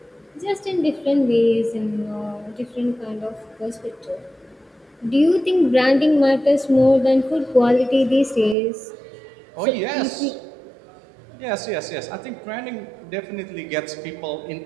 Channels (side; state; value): left; drops out; at 8.6 s